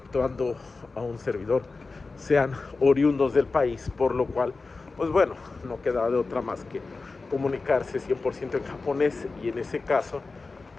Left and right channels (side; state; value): right; quieter; 3.9 dB